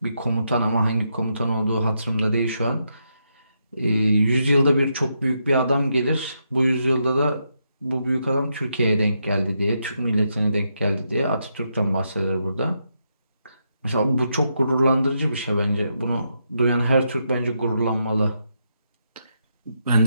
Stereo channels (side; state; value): both; inverted; correlation -0.81